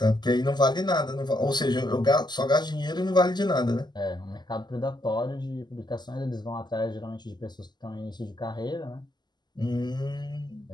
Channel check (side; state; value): right; late; 0.21 ms